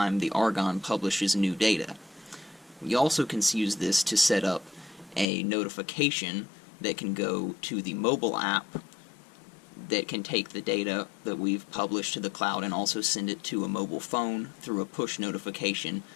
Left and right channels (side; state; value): right; drops out; at 5.2 s